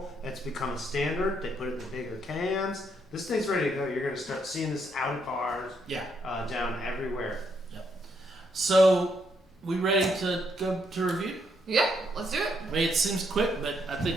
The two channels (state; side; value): normal; both; correlation 0.75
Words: It's become a standard. They put it in the bigger cans. This thing's ready to go. You're going to start seeing this out of bars, Yeah. down everywhere. So we ready to go to review? Yeah, let's do it. I mean, it seems quick, but I